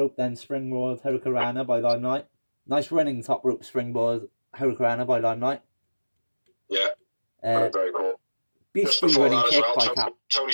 then springboard Hurricanrana by Limelight. Nice running top rope springboard Hurricanrana by Limelight. Yeah, very cool. Beastie running kick by Tony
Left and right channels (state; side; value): inverted; both; correlation -1.00